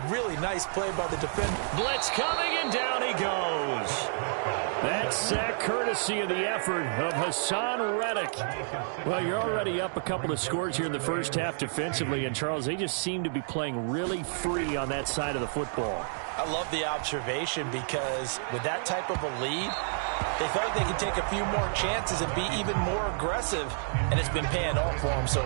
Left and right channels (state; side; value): silent; left; digital silence